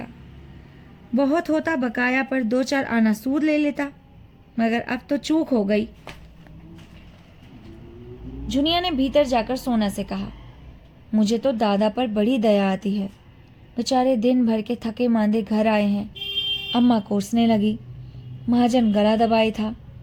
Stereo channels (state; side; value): identical; both; correlation 1.00